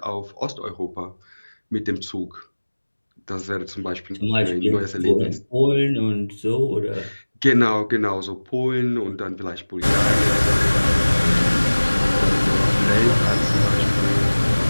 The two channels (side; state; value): both; inverted; correlation -1.00